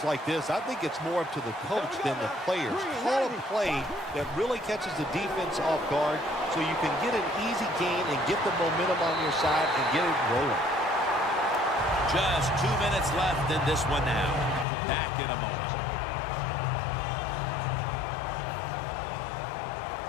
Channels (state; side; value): drops out; right; at 14.7 s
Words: like this, I think it's more up to the coach than the players. Call a play that really catches the defense off guard so you can get an easy gain and get the momentum on your side and get it rolling. Just 2 minutes left in this one now. Back in a moment.